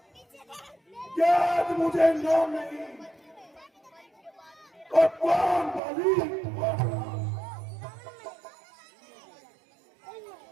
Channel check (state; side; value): drops out; left; at 5.8 s